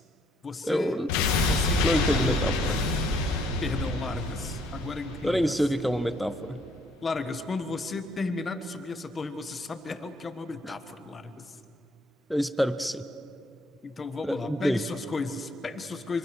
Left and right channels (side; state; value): both; normal; correlation 0.67